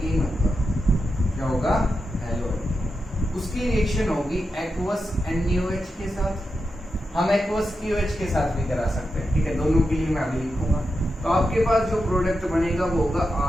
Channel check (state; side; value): normal; both; correlation 0.88